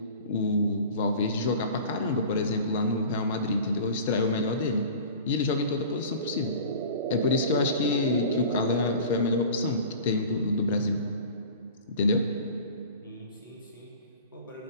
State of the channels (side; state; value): both; inverted; correlation -0.39